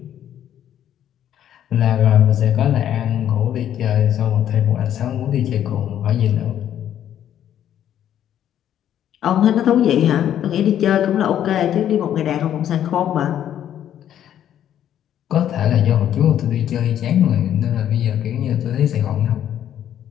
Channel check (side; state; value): right; quieter; 10.6 dB